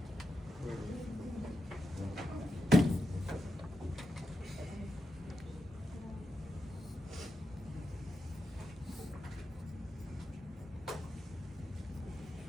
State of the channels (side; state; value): both; normal; correlation 0.88